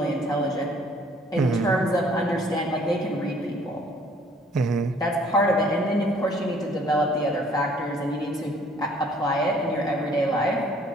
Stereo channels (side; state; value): both; normal; correlation 0.59